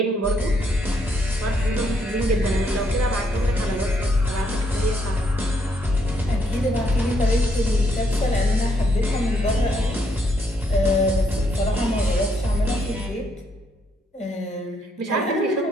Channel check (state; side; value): normal; both; correlation 0.73